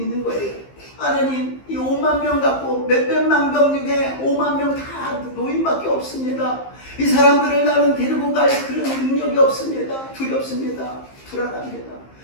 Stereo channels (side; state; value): right; late; 15 ms